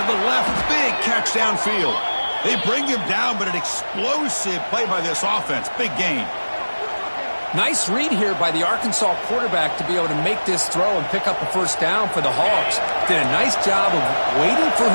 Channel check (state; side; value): inverted; both; correlation -1.00